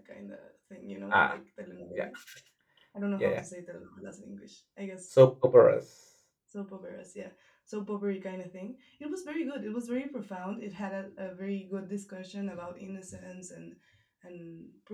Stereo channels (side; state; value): both; identical; correlation 1.00